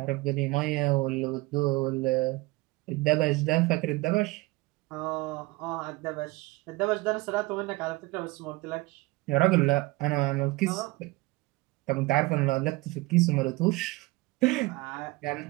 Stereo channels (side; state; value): left; quieter; 21.9 dB